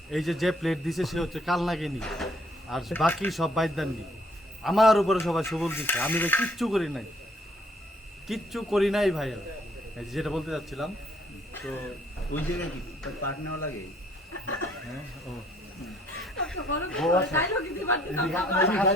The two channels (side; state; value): both; normal; correlation 0.63